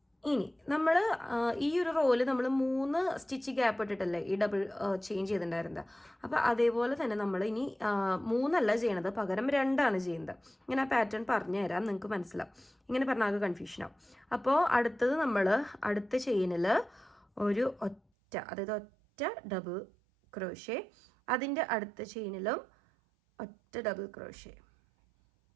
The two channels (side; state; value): left; drops out; at 18.0 s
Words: ഇനി നമ്മൾ ഈ ഒരു റോയിൽ നമ്മൾ 3 സ്റ്റിച്ച് ഗ്യാപ്പ് ഇട്ടിട്ടല്ലേ ഈ ഡബിൾ ചെയിൻ ചെയ്തിട്ടുണ്ടായിരുന്നത്. അപ്പോൾ അതേപോലെ തന്നെ നമ്മൾ ഇനി 3 അല്ല ചെയ്യണത്, പകരം 2 ചെയ്യുന്നത്. ഇങ്ങനെ ആ പാറ്റേൺ പറഞ്ഞു തരാം, നിങ്ങൾക്ക് മനസ്സിലാവും. ഇങ്ങനെ പറഞ്ഞാൽ കൺഫ്യൂഷനാവും. അപ്പോൾ അടുത്തത് നമ്മൾ അടുത്ത ചെയിനിൽ ഒരു ഒറ്റ, അതായത് ഒറ്റ ഡബിൾ ക്രോഷേ, അതിൻ്റെ അടുത്ത ചെയിനിലും ഒറ്റ ഡബിൾ ക്രോഷേ.